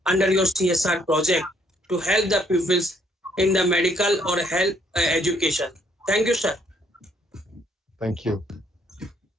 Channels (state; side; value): normal; both; correlation 0.66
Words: under your CSR project to help the pupils in the medical or health education. Thank you, sir. Thank you.